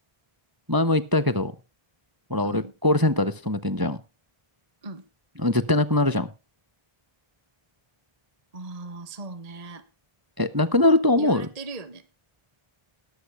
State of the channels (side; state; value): left; late; 1.0 ms